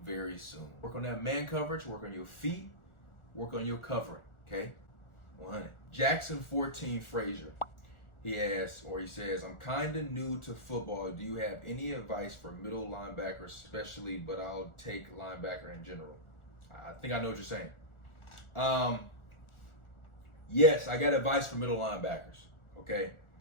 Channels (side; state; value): right; late; 1.4 ms